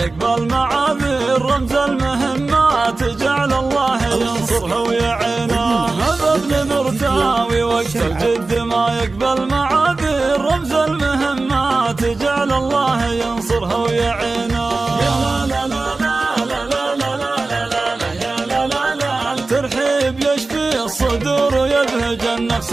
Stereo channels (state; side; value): quieter; left; 3.5 dB